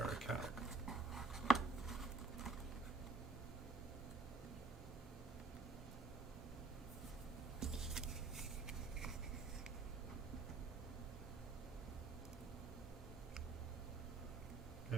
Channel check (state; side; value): quieter; left; 3.4 dB